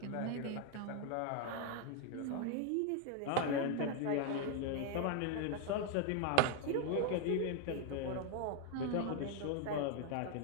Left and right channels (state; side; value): different; both; correlation 0.01